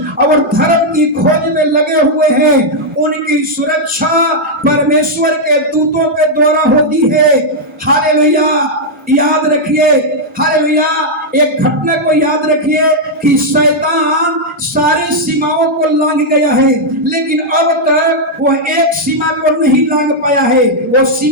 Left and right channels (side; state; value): both; normal; correlation -0.03